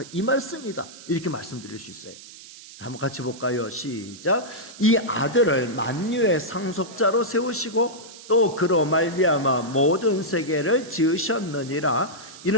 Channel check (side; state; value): right; noise; hiss, 17 dB below the sound